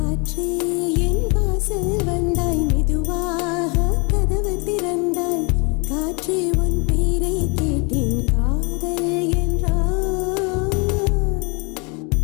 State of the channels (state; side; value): quieter; right; 31.9 dB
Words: என் வாசல் வந்தாய், மெதுவாக கதவு திறந்தாய். காற்றே உன் பேரை கேட்டேன், காதல் என்றாய்.